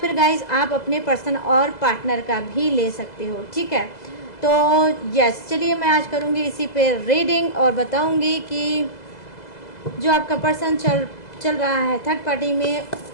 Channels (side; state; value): right; late; 2.0 ms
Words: गाइस आप अपने पर्सन और पार्टनर का भी ले सकते हो, ठीक है। तो यस, चलिए मैं आज करूँगी इसी पे रीडिंग और बताऊँगी कि जो आपका पर्सन चल रहा है थर्ड पार्टी में